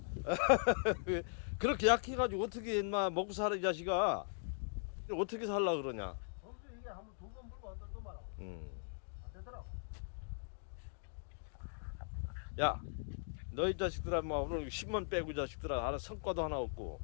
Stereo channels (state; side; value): silent; right; digital silence